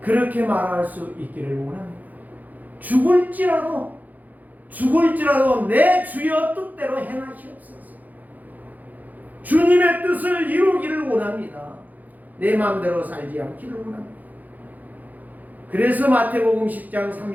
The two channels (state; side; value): late; left; 0.081 ms